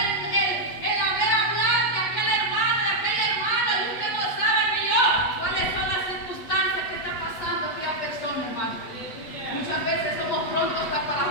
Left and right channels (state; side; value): late; right; 8.2 ms